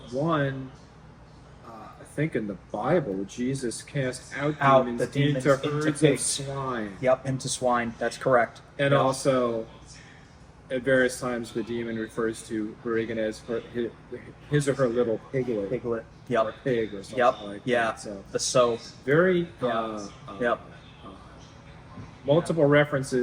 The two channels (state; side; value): identical; both; correlation 1.00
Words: One, I think in the Bible, Jesus cast out the demons demons into into herds of pigs. swine. Yep, into swine. That's correct. And Yep. also, at various times, the demon refers to Reagan as his or her little piglet. Piglet. Or Yep. pig or something Yep. like Yeah. that. So The so. very Yep. multiple